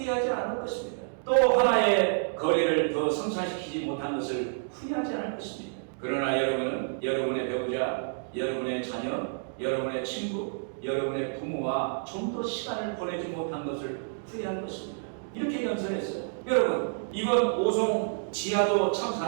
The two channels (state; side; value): silent; left; digital silence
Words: 않을 것입니다. 또 하나의 거리를 더 성사시키지 못한 것을 후회하지 않을 것입니다. 그러나 여러분은 여러분의 배우자, 여러분의 자녀, 여러분의 친구, 여러분의 부모와 좀 더 시간을 보내지 못한 것을 후회할 것입니다. 이렇게 연설했어요. 여러분, 이번 오송 지하도